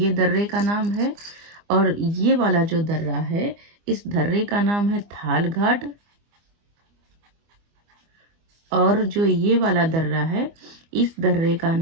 दर्रे का नाम है। और ये वाला जो दर्रा है, इस दर्रे का नाम है थालघाट। और जो ये वाला दर्रा है, इस दर्रे का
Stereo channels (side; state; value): left; late; 24 ms